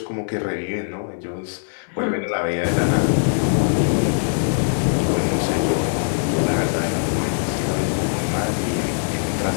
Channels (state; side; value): silent; right; 57 dB below the other